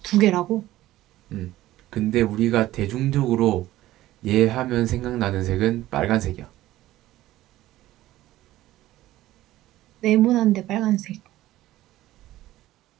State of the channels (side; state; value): left; quieter; 15.4 dB